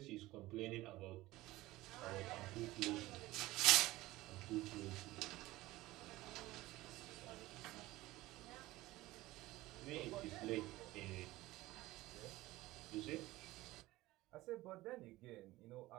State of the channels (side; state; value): left; quieter; 18.2 dB